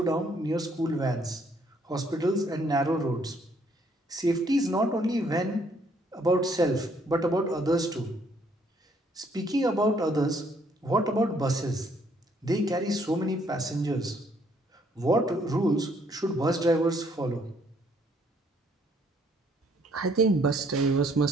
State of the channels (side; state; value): both; normal; correlation 0.66